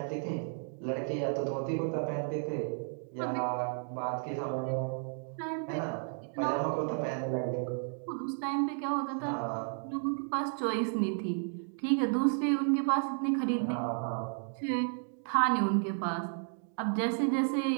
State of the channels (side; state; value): left; silent; 56 dB below the other